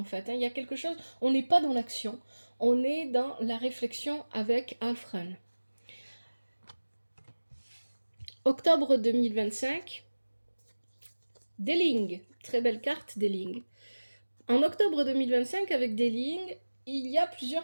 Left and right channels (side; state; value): both; inverted; correlation -1.00